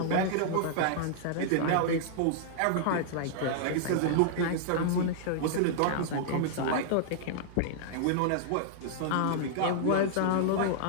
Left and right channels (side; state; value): both; different; correlation -0.01